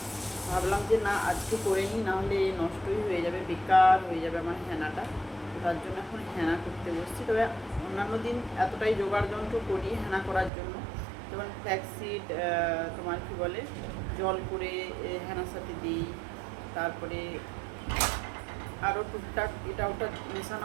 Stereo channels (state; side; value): drops out; left; at 10.5 s